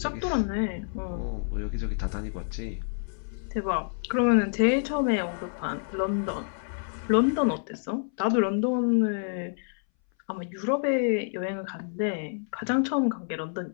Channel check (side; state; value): right; silent; 59 dB below the other